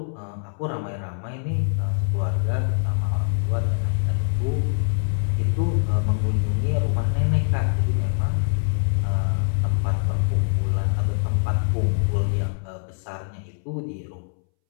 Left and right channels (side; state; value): right; silent; 63 dB below the other